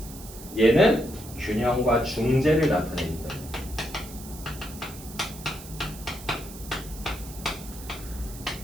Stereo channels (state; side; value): noise; right; hiss, 15 dB below the sound